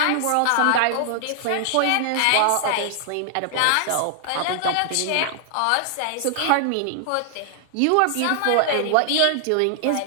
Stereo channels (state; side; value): different; both; correlation -0.01